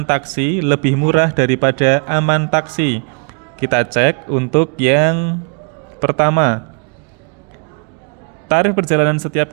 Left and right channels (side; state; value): left; quieter; 39.3 dB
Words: taksi lebih murah daripada aman taksi. Kita cek untuk yang pertama. Tarif perjalanan